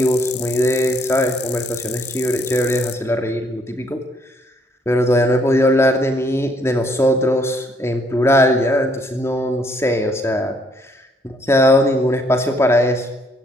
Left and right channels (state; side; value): normal; both; correlation 0.67